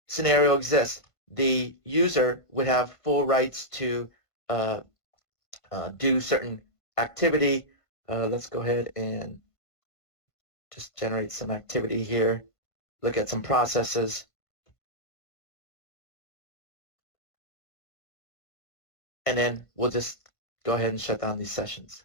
scenario exists. The user would have full rights to do certain activity. Let's go ahead and just generate some activity here. Look at some processes. And then we'll just go ahead and shut down these sessions.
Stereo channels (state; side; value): late; right; 1.5 ms